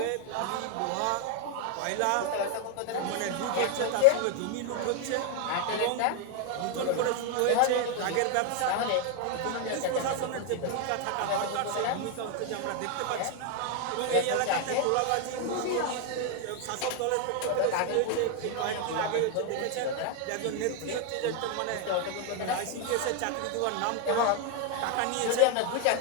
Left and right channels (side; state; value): both; different; correlation 0.00